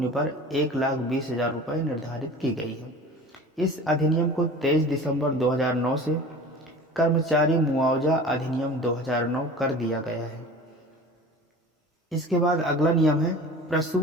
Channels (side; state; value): both; normal; correlation 0.39